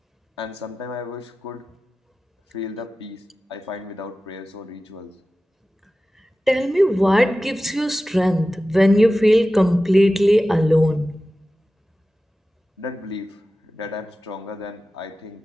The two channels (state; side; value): normal; both; correlation 0.95